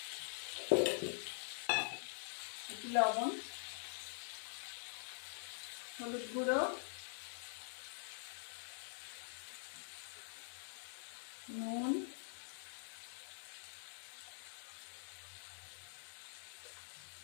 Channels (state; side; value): silent; right; digital silence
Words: একটু লবণ, হলুদ গুঁড়ো, নুন,